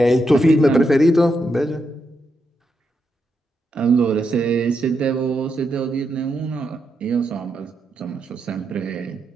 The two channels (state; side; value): normal; both; correlation 0.83